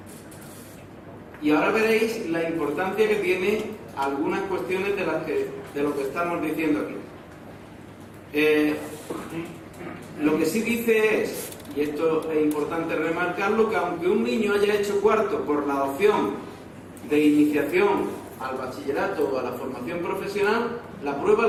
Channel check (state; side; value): identical; both; correlation 1.00